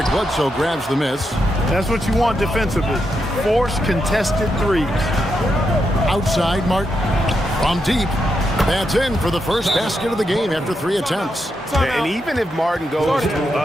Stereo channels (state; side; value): normal; both; correlation 0.83